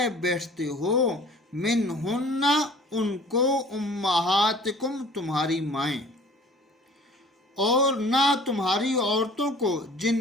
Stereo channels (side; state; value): both; normal; correlation 0.49